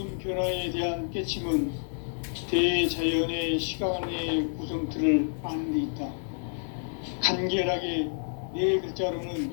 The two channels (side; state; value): right; silent; digital silence